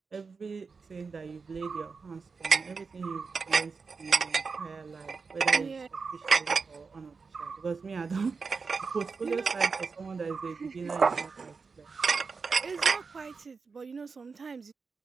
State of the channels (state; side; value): quieter; left; 4.8 dB